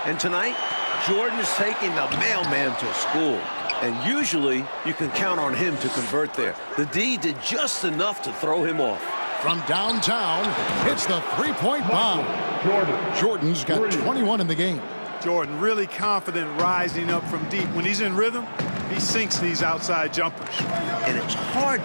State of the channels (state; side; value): inverted; both; correlation -1.00